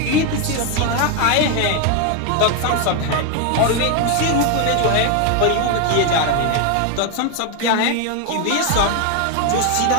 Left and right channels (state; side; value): different; both; correlation 0.01